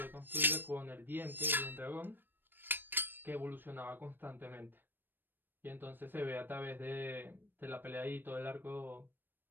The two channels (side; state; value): left; late; 0.095 ms